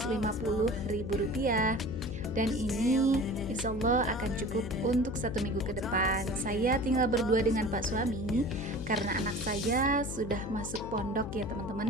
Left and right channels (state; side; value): noise; left; hum, 8 dB below the sound